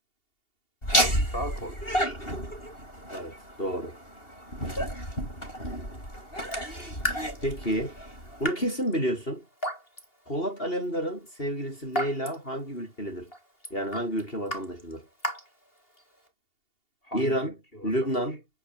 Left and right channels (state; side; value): late; right; 2.8 ms